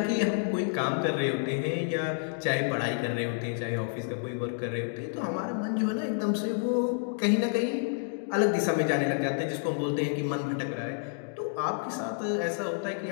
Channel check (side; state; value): right; silent; digital silence